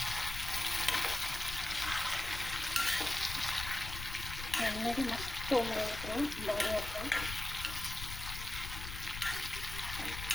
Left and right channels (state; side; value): noise; left; rumble, 8 dB below the sound